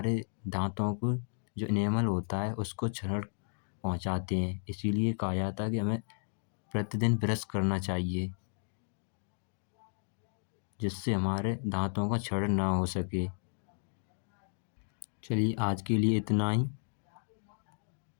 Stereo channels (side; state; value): right; silent; digital silence